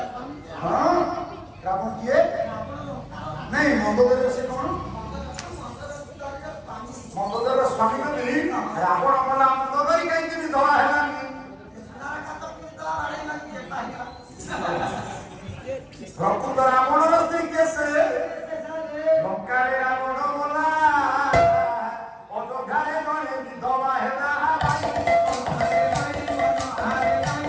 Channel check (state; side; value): identical; both; correlation 1.00